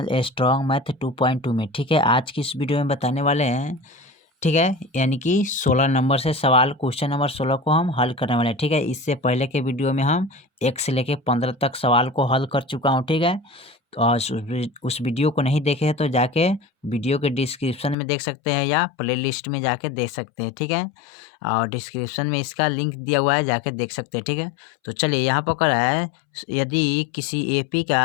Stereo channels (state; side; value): drops out; right; at 17.9 s